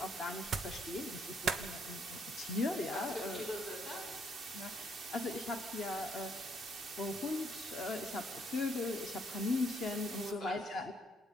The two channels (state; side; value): normal; both; correlation 0.70